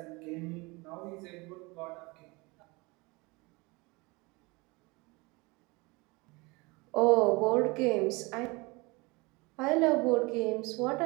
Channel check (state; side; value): quieter; left; 25.6 dB